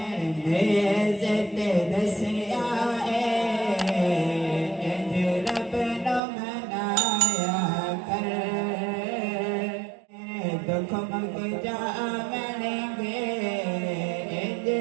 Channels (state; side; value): drops out; left; at 6.2 s